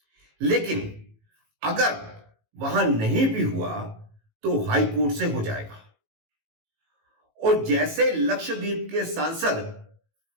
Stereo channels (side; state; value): left; late; 18 ms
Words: लेकिन अगर वहां नहीं भी हुआ तो हाई कोर्ट से हो जाएगा। और जैसे लक्षद्वीप के सांसद